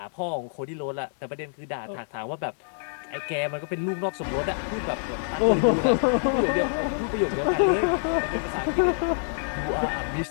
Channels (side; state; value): right; silent; digital silence